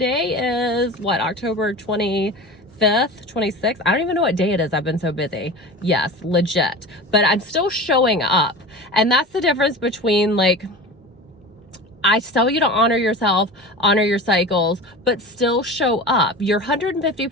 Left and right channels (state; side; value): normal; both; correlation 0.32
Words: is what, October 25th, 26th. I don't even know what day it is. I've been so busy. Yes, legit. But I'm still showing up. And that's the difference between like, I tell you to honor yourself, honor your cycles, but still show up. Your